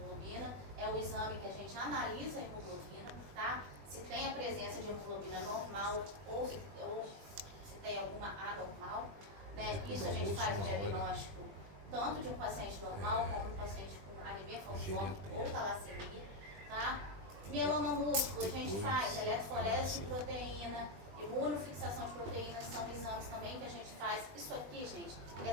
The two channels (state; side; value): late; left; 21 ms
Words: É o exame que a gente analisa a hemoglobina, tá? Se tem a presença de hemoglobina normal ou se tem alguma anormal, né? Isso a gente faz o diagnóstico tanto de um paciente normal como um paciente com anemia falciforme ou talassemia, tá? Mieloma múltiplo, a gente faz eletroforese de proteína, imunofixação de proteínas, são exames também que a gente faz. Isso aqui, gente, é